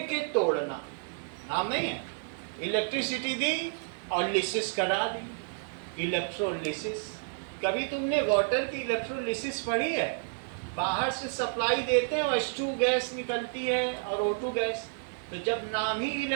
के तोड़ना, नाम नहीं है? इलेक्ट्रिसिटी दी और लिसिस करा दी, इलेक्ट्रोलिसिस। कभी तुमने वाटर की इलेक्ट्रोलिसिस पढ़ी है? बाहर से सप्लाई देते हैं और H2 गैस निकलती है और O2 गैस। तो जब नाम ही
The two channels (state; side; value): silent; left; 56 dB below the other